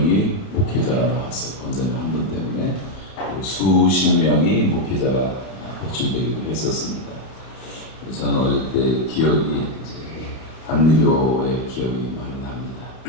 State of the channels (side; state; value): right; late; 31 ms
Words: 목회자가 나왔어요. 권사님 한 분 때문에. 그리고 수십 명이 목회자가 배출되기도 했었습니다. 그래서 저는 어릴 때 기억이 이제 감리교의 기억이 많이 납니다.